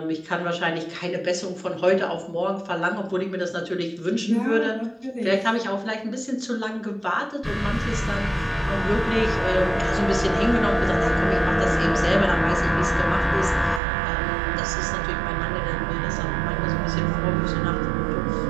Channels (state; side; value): drops out; left; at 13.8 s